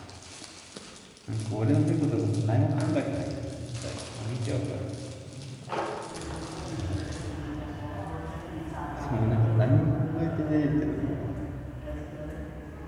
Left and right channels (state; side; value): identical; both; correlation 1.00